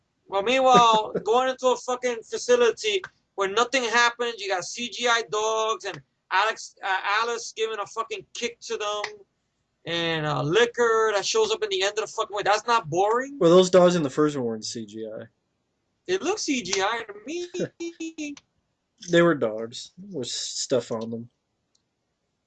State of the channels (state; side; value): identical; both; correlation 1.00